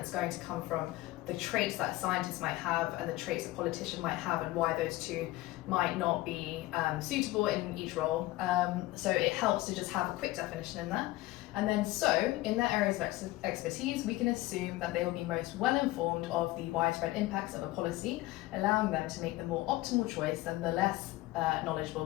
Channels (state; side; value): quieter; right; 18.2 dB